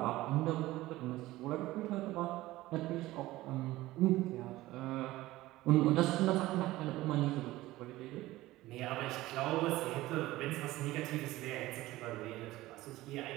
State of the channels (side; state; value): left; quieter; 17.4 dB